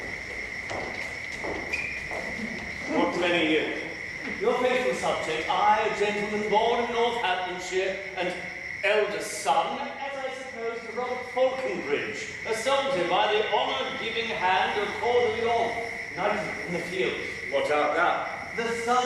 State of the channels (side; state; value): both; identical; correlation 1.00